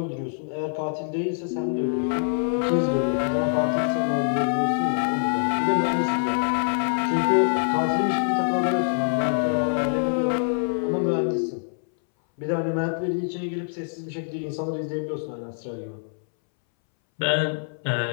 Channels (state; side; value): silent; right; 62 dB below the other